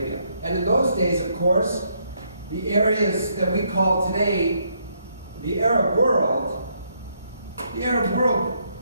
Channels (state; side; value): inverted; both; correlation -0.74